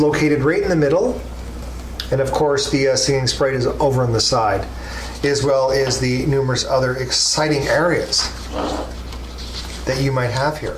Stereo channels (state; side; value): identical; both; correlation 1.00